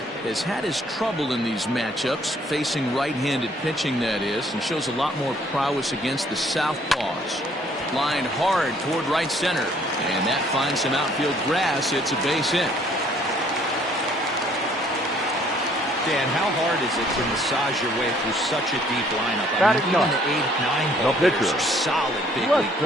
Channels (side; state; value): both; normal; correlation 0.62